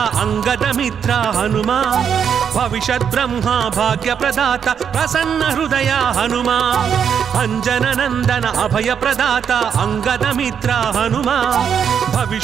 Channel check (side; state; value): left; quieter; 7.7 dB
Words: అంగద మిత్ర హనుమా భవిష్యత్ బ్రహ్మ భాగ్య ప్రదాత ప్రసన్న హృదయ హనుమా అంజన నందన అభయ ప్రదాత అంగద మిత్ర హనుమా